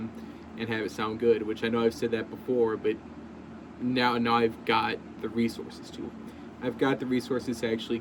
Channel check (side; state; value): both; identical; correlation 1.00